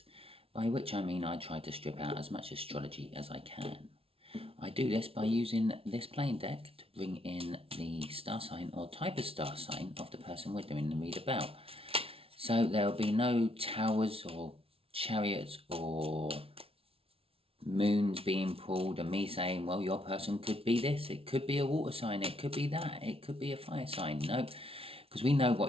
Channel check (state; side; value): late; left; 0.27 ms